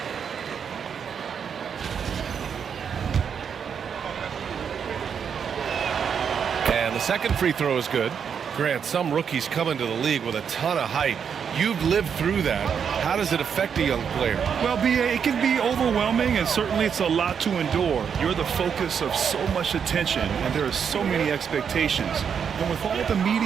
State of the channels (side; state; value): left; quieter; 7.2 dB